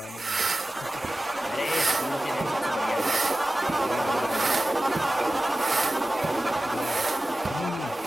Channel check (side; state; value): both; normal; correlation 0.96